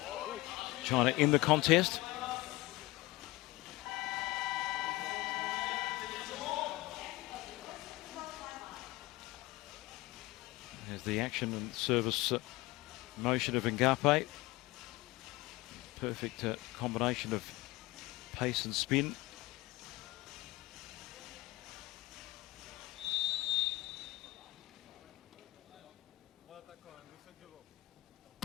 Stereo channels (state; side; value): quieter; right; 20.2 dB